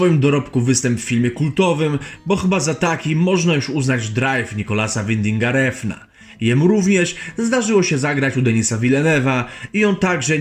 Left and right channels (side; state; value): both; identical; correlation 1.00